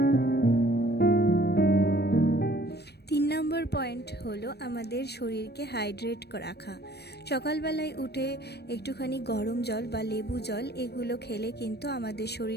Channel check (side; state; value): right; late; 0.47 ms